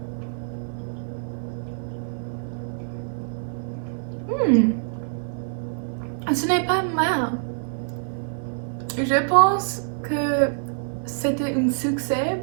Ce n'est pas mal. Je pense que c'était un succès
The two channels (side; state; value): left; silent; 61 dB below the other